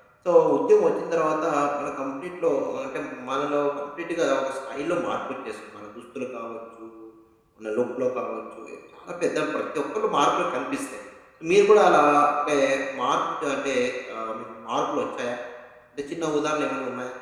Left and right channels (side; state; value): both; identical; correlation 1.00